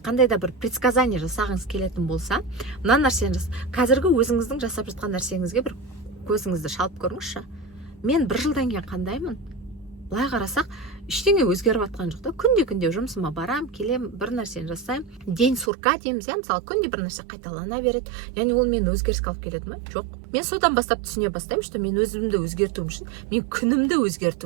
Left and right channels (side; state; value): left; drops out; at 15.7 s